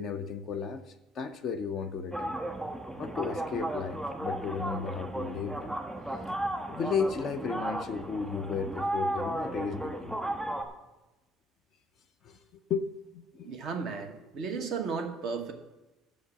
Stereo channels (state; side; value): normal; both; correlation 0.64